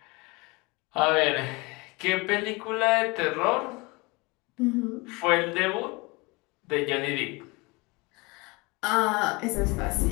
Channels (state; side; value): quieter; right; 25.9 dB